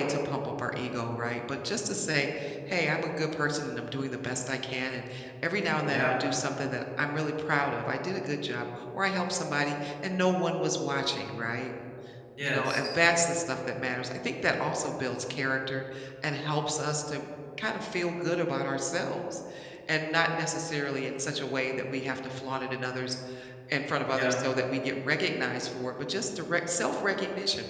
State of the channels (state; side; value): identical; both; correlation 1.00